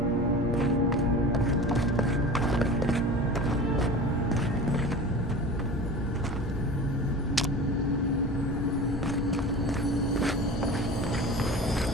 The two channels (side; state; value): both; normal; correlation 0.35